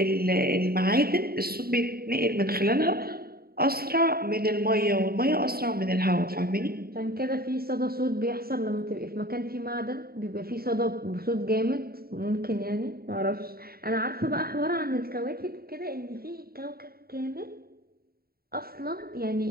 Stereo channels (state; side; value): late; left; 0.44 ms